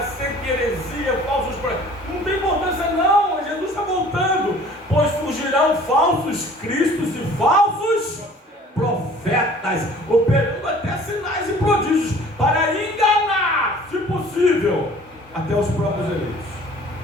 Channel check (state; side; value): normal; both; correlation 0.50